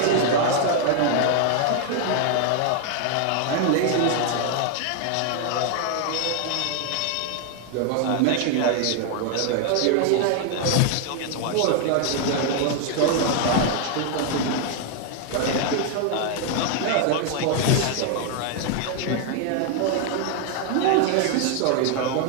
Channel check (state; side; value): different; both; correlation 0.00